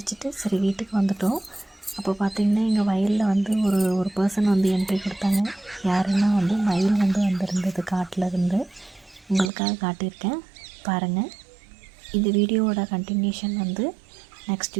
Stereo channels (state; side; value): drops out; left; at 9.5 s